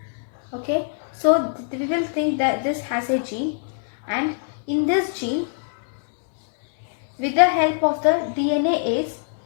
Okay, so we will think that this has a gene, and in this gene, with the help of the DNase,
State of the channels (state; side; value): silent; right; digital silence